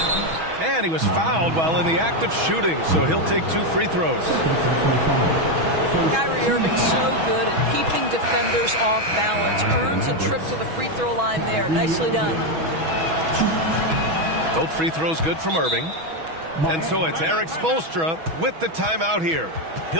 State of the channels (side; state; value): left; late; 6.2 ms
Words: And he was fouled while in the act of shooting, so he'll take 2 free throws. Kyrie Irving so good at keeping defenders off balance. Earns a trip to the free throw line there. Nicely done. Both free throws good from Irving. And so it's Eric Spoelstra with the timeout here.